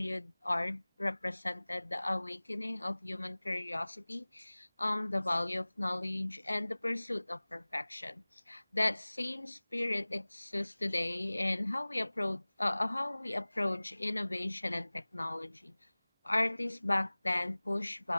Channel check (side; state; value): both; inverted; correlation -1.00